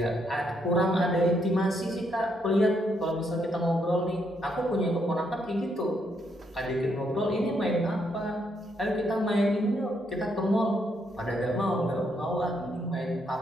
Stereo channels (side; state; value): both; normal; correlation 0.75